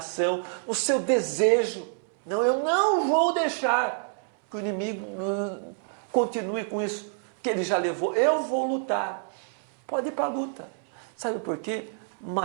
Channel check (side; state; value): left; silent; 60 dB below the other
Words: no seu desejo. Não, eu não vou deixar que o inimigo continue com isso que ele já levou. Eu vou lutar. Pode ir para a luta. Sabe por quê?